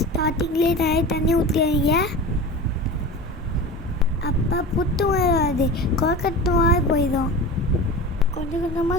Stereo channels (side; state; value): both; normal; correlation 0.31